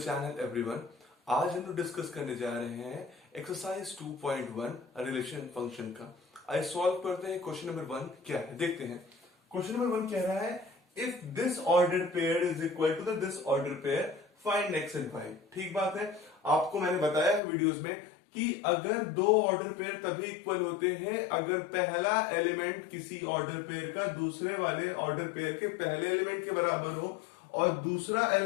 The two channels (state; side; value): drops out; right; at 17.4 s